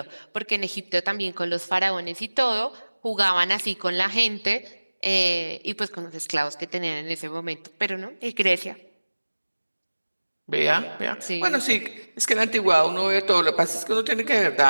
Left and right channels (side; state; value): both; inverted; correlation -1.00